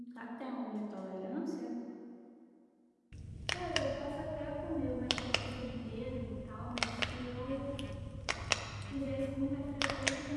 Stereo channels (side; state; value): both; identical; correlation 1.00